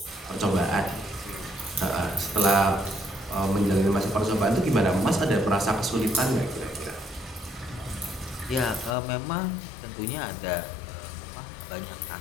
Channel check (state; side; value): drops out; right; at 9.0 s